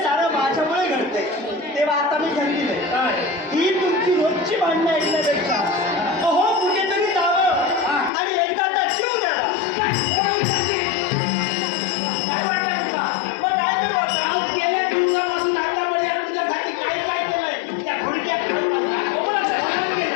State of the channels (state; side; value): drops out; right; at 8.1 s